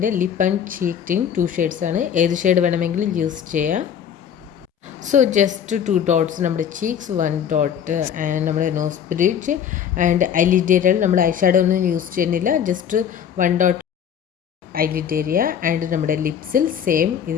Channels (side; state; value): right; quieter; 8.5 dB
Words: lip and cheek tint 2 shades ആണ്. ഏത് ഷെയ്ഡ് വേണമെങ്കിലും യൂസ് ചെയ്യാം. സോ ജസ്റ്റ് 2 ഡോട്ട്സ് നമ്മുടെ ചീക്സ്, 1 ഡോട്ട് ആൻഡ് നമ്മുടെ നോസ് ബ്രിഡ്ജ് ആൻഡ് ഐലിഡ് ഏരിയയിൽ നമ്മൾ ഐ ഷാഡോ ഒന്നും യൂസ് ചെയ്യുന്നില്ല. Just 1 dot eyelid area and നമ്മുടെ ലിപ്സിൽ സെയിം